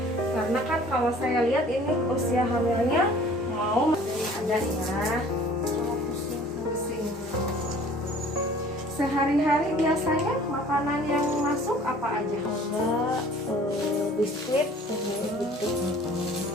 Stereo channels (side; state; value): both; normal; correlation 0.51